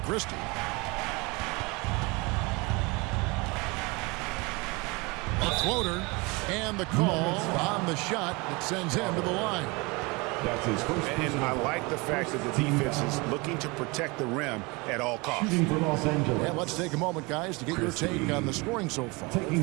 A floater, and the call on the shot that sends him to the line. That's his first. And I like the fact that the defense is looking to protect the rim at all costs. Shooting for Los Angeles. And let's take a moment, guys, to get your take on the scoring so far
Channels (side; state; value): left; quieter; 26.4 dB